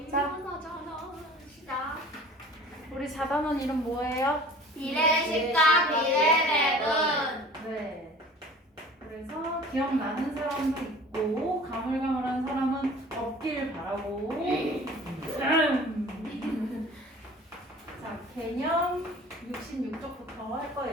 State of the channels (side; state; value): both; normal; correlation 0.45